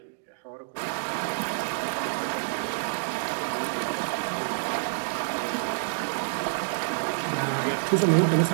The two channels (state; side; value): silent; left; digital silence